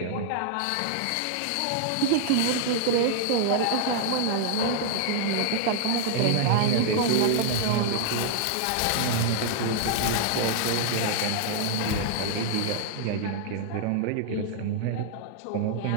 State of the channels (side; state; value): both; different; correlation -0.01